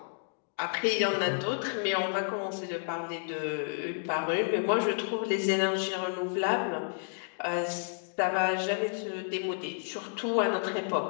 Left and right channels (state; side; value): silent; right; digital silence